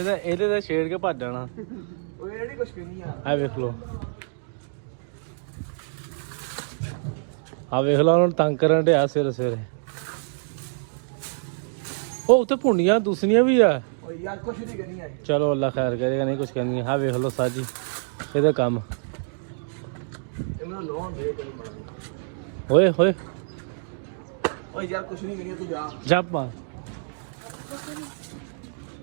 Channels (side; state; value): left; silent; digital silence